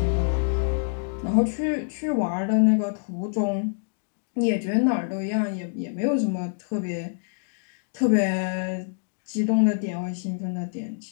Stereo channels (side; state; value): right; silent; digital silence